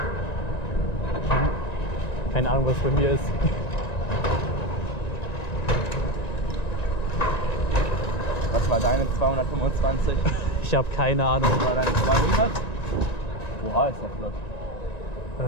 Keine Ahnung, was bei mir ist. Was war deine 225? Ich habe keine Ahnung. Was war deine 200? Oha, ist ja flott.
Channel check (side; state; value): right; late; 1.9 ms